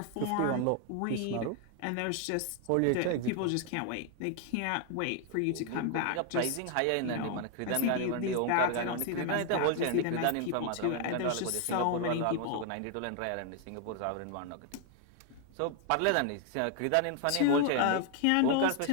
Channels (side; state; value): both; different; correlation 0.00